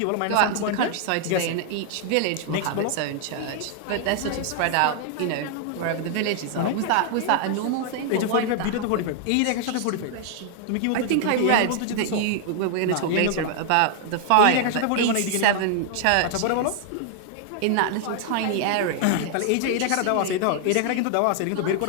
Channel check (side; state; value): both; different; correlation 0.00